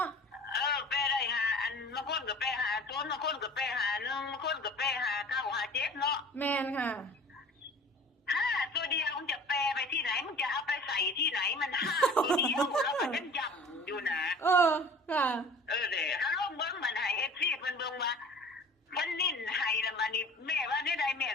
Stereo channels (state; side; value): normal; both; correlation 0.44